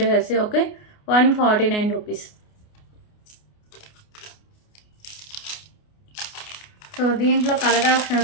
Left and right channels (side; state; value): right; late; 29 ms